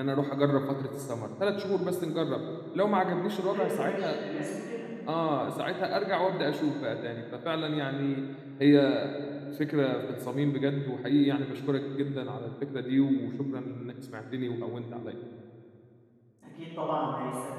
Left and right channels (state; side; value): identical; both; correlation 1.00